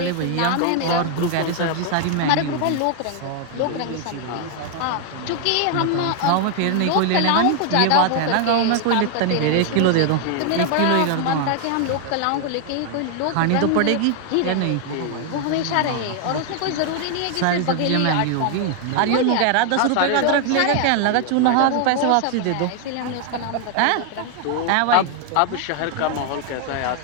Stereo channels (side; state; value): both; different; correlation 0.00